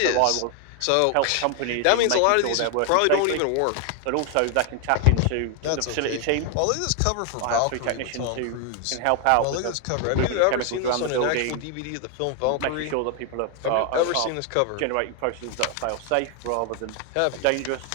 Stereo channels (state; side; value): different; both; correlation 0.00